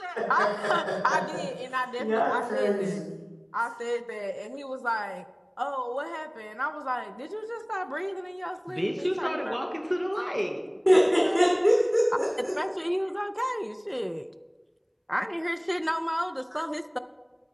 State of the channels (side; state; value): both; identical; correlation 1.00